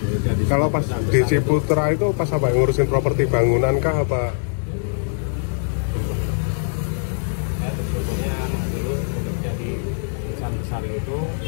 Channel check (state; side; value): silent; right; 64 dB below the other